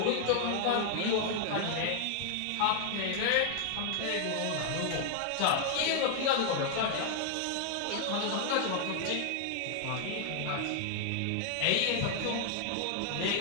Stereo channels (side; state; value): both; different; correlation 0.00